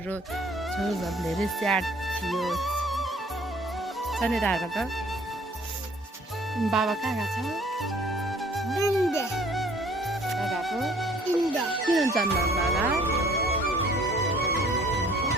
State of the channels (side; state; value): both; normal; correlation 0.56